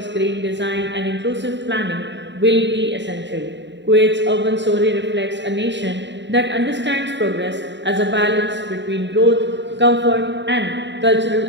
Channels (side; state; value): left; late; 0.52 ms